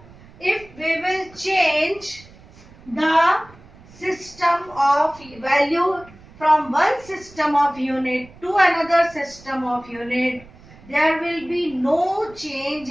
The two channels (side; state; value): right; noise; rumble, 23 dB below the sound